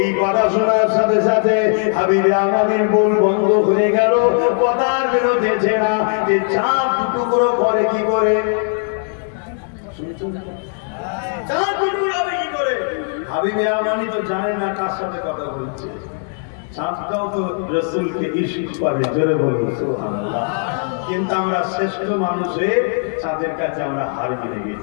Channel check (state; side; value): silent; right; 57 dB below the other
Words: কথা শোনার সাথে সাথে হাবিবে আমাদের বল বন্ধ হয়ে গেল, কথার বেরোতেছে না যে চাঁদ টুকরো করে কি করে, চাঁদ টুকরো হবে কি করে? হাবিবে আমানি তো জানে না কার সাথে কথা বলছে। চাঁদটাও তো রাসূলকে ইশক করে, জোরে বলুন সুবহানাল্লাহ। কিন্তু আমরা শ্রেষ্ঠ মানুষে চাঁদের কাছে আমরা হার মেনে